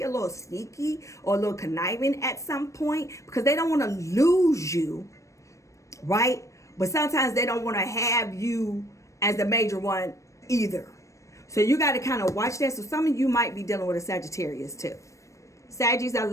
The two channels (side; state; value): right; late; 0.15 ms